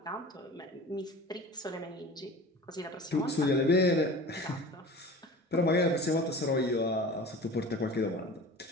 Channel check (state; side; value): normal; both; correlation 0.39